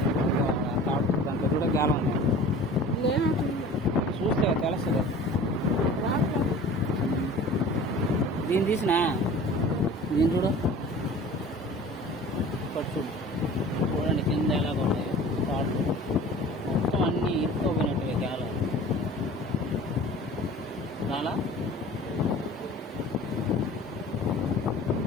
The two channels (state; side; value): normal; both; correlation 0.43